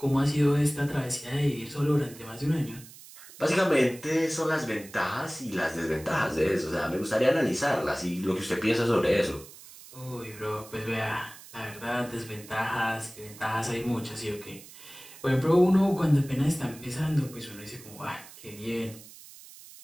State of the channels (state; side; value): noise; right; hiss, 18 dB below the sound